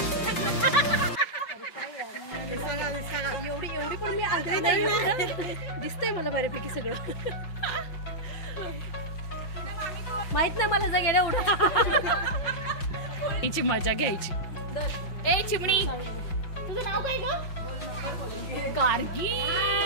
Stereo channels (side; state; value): right; late; 5.6 ms